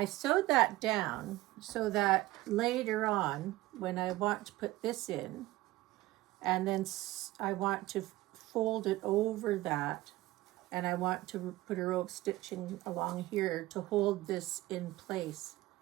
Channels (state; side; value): quieter; left; 17.9 dB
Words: sewed that down so that later on, when I want to put this in, and then I want to fold it over that, and I want to put a row of stitching along here to hold this in place,